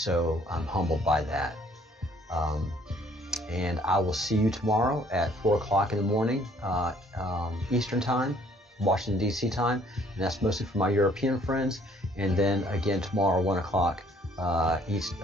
I'm humbled by that. And I will see you tomorrow at 4 o'clock in the morning, Eastern Time, Washington, D.C. time. And that's mostly for my European friends. And then again tomorrow, 1 o'clock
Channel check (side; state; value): both; normal; correlation 0.60